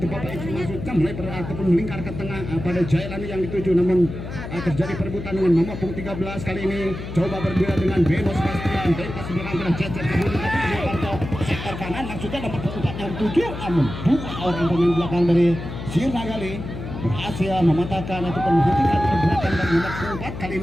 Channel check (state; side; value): noise; left; hum, 8 dB below the sound